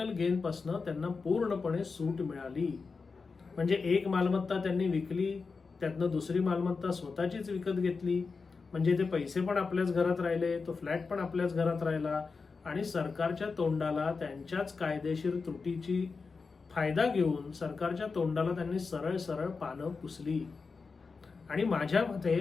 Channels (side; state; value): right; quieter; 4.7 dB